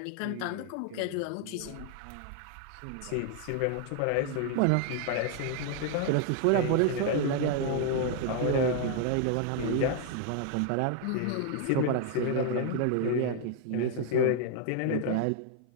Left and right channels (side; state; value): both; different; correlation 0.00